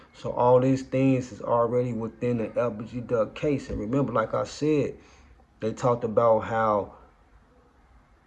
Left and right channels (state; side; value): identical; both; correlation 1.00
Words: So all these things is already within the LBG Duck case. And remember, like I said, they talked about how